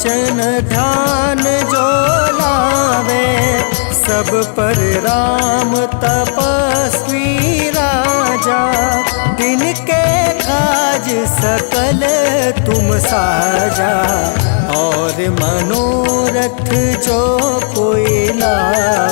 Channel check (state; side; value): silent; right; digital silence